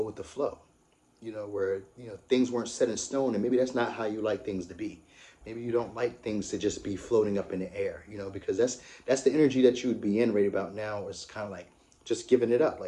with the flow, you know, where, you know, things weren't set in stone, and maybe that's not how you like things to be. Maybe you don't like things to just be floating up in the air, you know, because that's the energy that you would be in right about now. Is kind of like just giving it up,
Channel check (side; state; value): both; identical; correlation 1.00